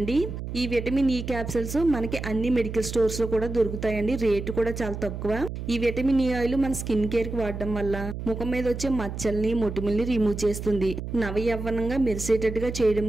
ఈ విటమిన్ ఈ క్యాప్సూల్స్ మనకి అన్ని మెడికల్ స్టోర్స్ లో కూడా దొరుకుతాయండి. రేటు కూడా చాలా తక్కువ. ఈ విటమిన్ ఈ ఆయిల్ మన స్కిన్ కేర్ కి వాడడం వల్ల ముఖం మీద వచ్చే మచ్చల్ని మొటిమల్ని రిమూవ్ చేస్తుంది. నవయవ్వనంగా మెరిసేటట్టుగా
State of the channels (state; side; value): noise; right; hum, 7 dB below the sound